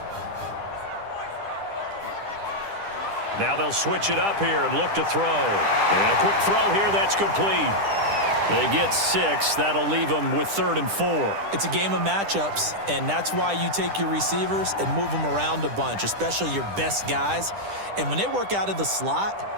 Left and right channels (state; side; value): late; left; 10 ms